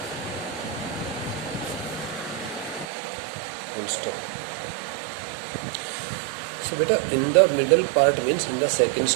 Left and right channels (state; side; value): drops out; left; at 2.9 s